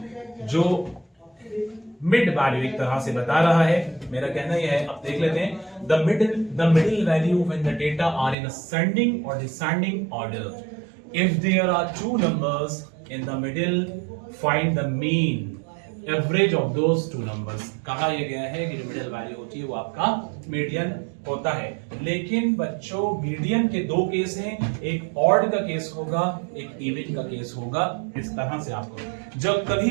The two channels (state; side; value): drops out; left; at 8.3 s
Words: जो मिड वैल्यू एक तरह से बता रहा है। मेरा कहना यह है, अब देख लेते हैं। The middle value when the data are in ascending और descending order. If there are 2 numbers in the middle, find the mean average of those 2 numbers। कहा यह गया है कि जो मिडिल वैल्यू होती है वो आपका मीडियन होता है। लेकिन बच्चों मीडियन के दो केस हैं, एक ऑड का केस होगा, एक इवन का केस होगा। इस तरह से आपको जब कभी